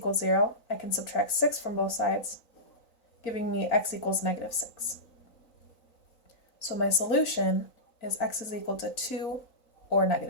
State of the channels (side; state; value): right; late; 3.9 ms